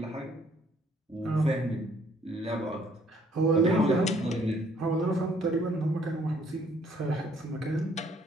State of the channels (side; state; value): both; normal; correlation 0.63